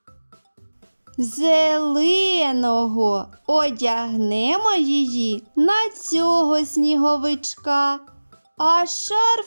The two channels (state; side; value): inverted; both; correlation -1.00